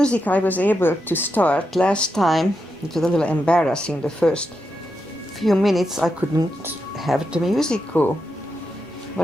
I was able to start last time, it was a little embarrassing. The first few minutes I couldn't have the music go.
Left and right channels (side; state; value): both; normal; correlation 0.86